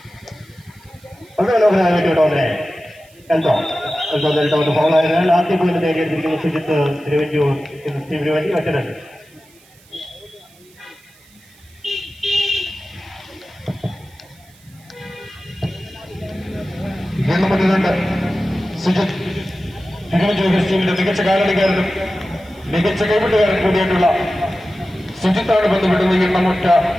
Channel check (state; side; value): noise; right; hiss, 28 dB below the sound